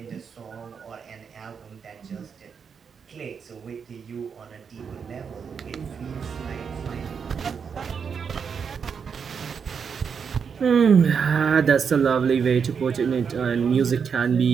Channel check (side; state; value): left; quieter; 6.4 dB